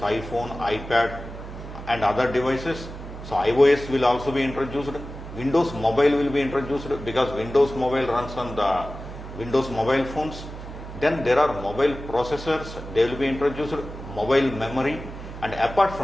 iPad and other devices. So iOS will also be introduced. Windows Mobile will be introduced because Windows Mobile runs on the Windows mobile phones. Then there are mobile processors, they will be introduced, mobile memory, and apart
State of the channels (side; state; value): right; noise; hum, 12 dB below the sound